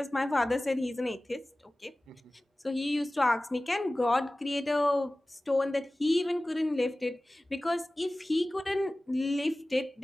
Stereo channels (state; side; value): normal; both; correlation 0.97